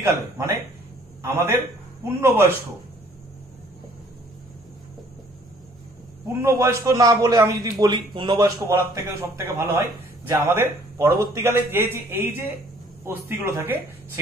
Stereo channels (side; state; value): both; normal; correlation 0.58